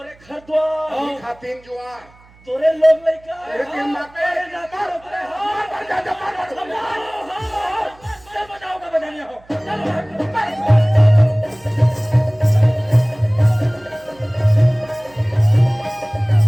घर द्वार खातिन जुआर तोरे लोग लइका तेरे तीन माते तोरे नाता तोरे हाथ मर जा चल बजाओ का बजानिया हो चलो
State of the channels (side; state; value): right; noise; hum, 27 dB below the sound